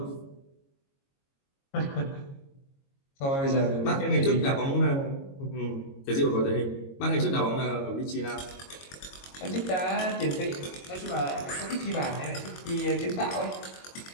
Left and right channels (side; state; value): right; late; 22 ms